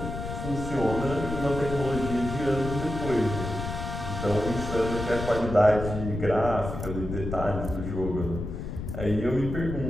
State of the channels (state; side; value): noise; left; rumble, 6 dB below the sound